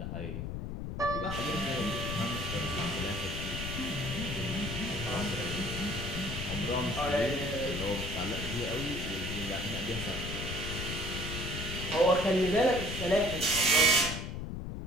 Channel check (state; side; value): noise; left; rumble, 5 dB below the sound